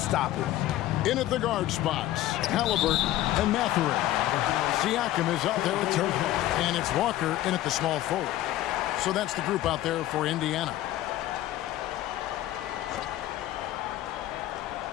it. In at the guard spots, Halliburton and Mathurin. Siakam is out there with Turner, and it's Walker in at the small forward. So that's the group out there for Indiana.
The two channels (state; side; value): quieter; right; 14.5 dB